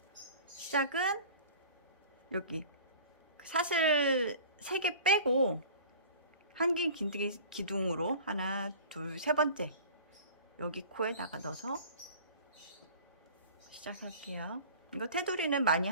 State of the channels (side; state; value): both; inverted; correlation -0.42